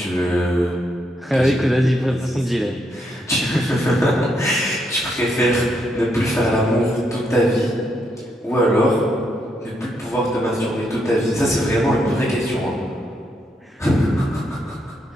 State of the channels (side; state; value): both; normal; correlation 0.78